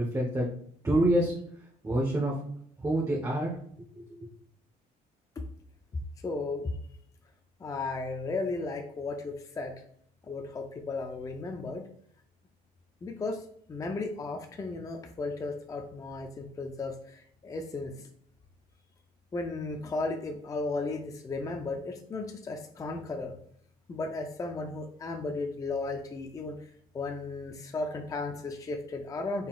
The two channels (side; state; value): both; normal; correlation 0.70